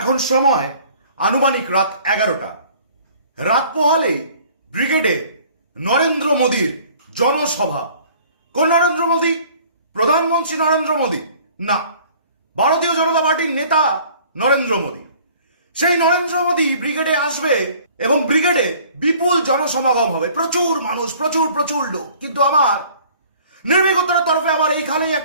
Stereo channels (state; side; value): inverted; both; correlation -0.52